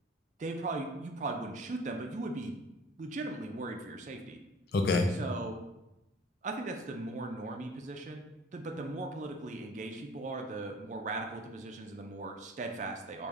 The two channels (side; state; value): both; normal; correlation 0.48